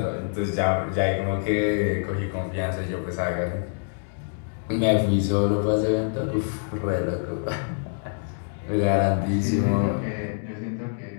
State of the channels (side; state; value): right; silent; digital silence